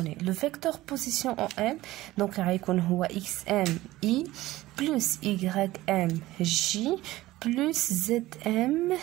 لو فيكتور بوزيسيون او ام دونك غيكون هو اكس ام اي بلس y ام جي بلس زد ام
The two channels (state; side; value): quieter; left; 17.1 dB